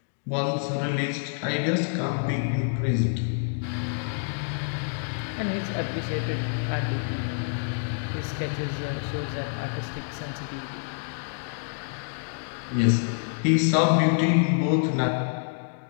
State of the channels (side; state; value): right; silent; digital silence